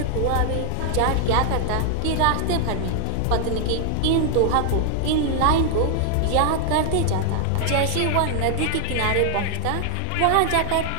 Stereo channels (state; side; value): different; both; correlation 0.00